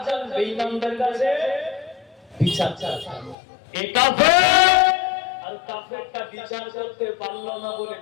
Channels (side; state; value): right; drops out; at 3.4 s